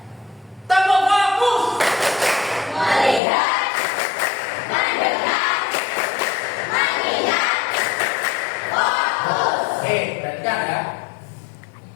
Tepuk fokus. Melihat, mendengar, mengingat, fokus. Oke, perhatikan ya.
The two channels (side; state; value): right; drops out; at 3.2 s